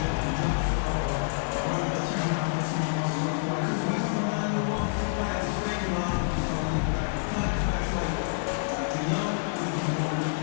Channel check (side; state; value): right; silent; digital silence